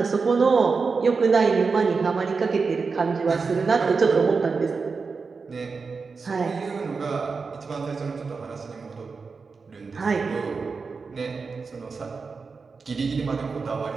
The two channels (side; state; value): left; quieter; 4.8 dB